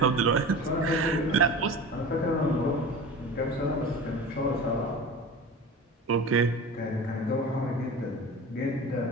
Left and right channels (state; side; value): normal; both; correlation 0.34